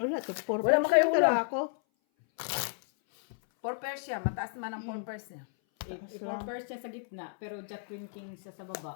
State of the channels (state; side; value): silent; right; 56 dB below the other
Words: to. 4 Wala mo kayo ulo. ako. 4 pairs siya. Mataas naman ang 4 pairs niya. I-first siya sa gitna, pero jack queen king siya sa